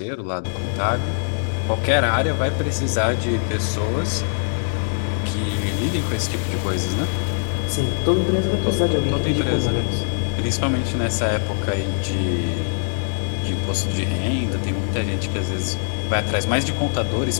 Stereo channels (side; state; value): right; silent; digital silence